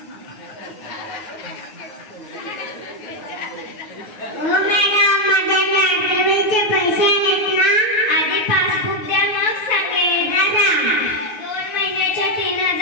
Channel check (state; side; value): late; right; 9.3 ms